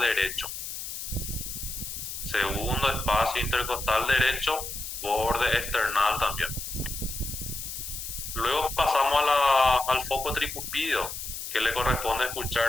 Segundo espacio intercostal derecho, borde external también. Luego pasamos al foco tricúspide, que le corresponde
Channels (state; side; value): noise; left; hiss, 7 dB below the sound